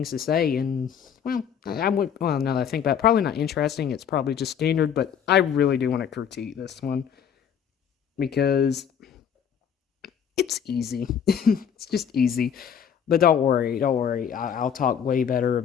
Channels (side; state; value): right; quieter; 8.0 dB